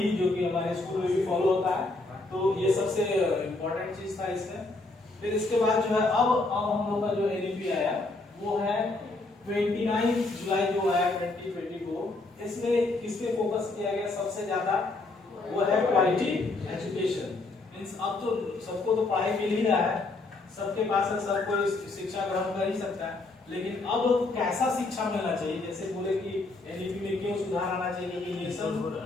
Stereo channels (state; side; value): quieter; right; 3.2 dB